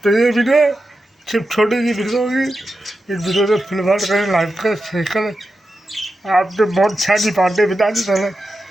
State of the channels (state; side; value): normal; both; correlation 0.90